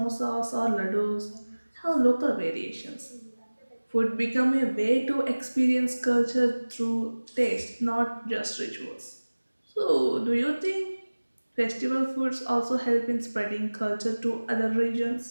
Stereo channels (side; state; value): both; inverted; correlation -1.00